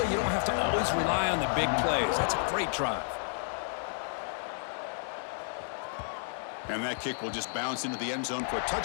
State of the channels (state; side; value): silent; right; digital silence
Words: you don't have to always rely on the big plays. That's a great drive. And that kick will just bounce into the end zone for a